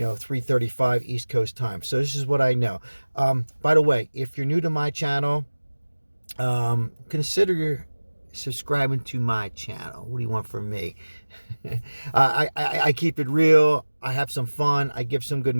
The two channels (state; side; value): inverted; both; correlation -1.00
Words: East Coast time. So this is what I know. By the way, if you're new to my channel, consider subscribing to my channel. What do you want from me? I keep it real. I have some fun. I give some good